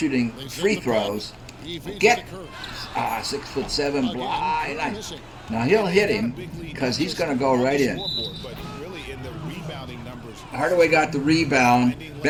free throws, get 6'7" blind. Now he'll hit him because he's going to go right in. Hardaway got the rebound.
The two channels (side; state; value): both; identical; correlation 1.00